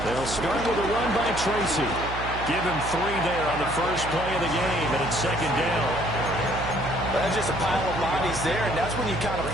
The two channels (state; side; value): noise; right; hum, 8 dB below the sound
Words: They'll start with a run by Tracy. Give him 3 there on the first play of the game, and it's 2nd down. That's just a pile of bodies there, and that's when you kind of